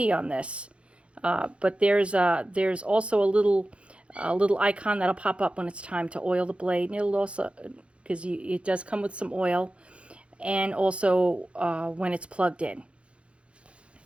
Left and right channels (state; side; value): late; left; 0.060 ms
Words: on this, but there's also a little icon that'll pop up when it's time to oil the blade. And it'll also, because it does come with some oil, and also when it's plugged in.